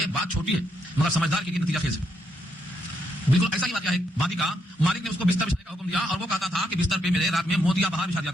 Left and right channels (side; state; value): both; normal; correlation 0.77